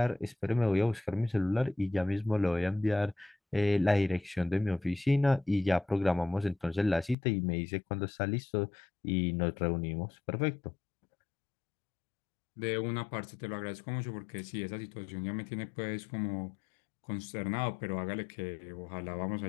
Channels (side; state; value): right; drops out; at 7.2 s